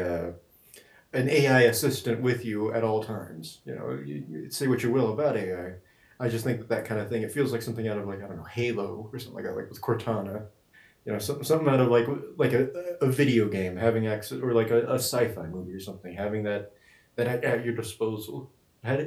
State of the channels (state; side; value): identical; both; correlation 1.00